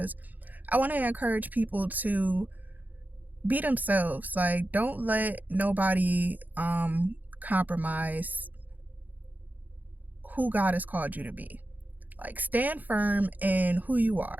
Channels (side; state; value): left; late; 0.082 ms